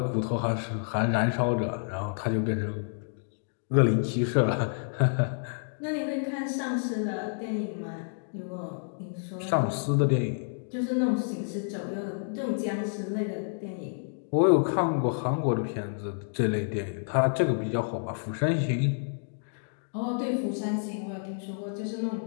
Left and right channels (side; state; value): right; silent; digital silence